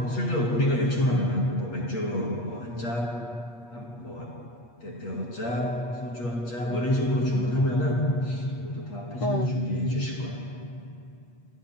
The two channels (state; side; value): late; right; 8.4 ms